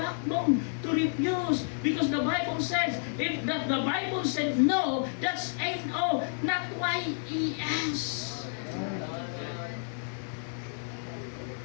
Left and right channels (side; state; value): right; silent; digital silence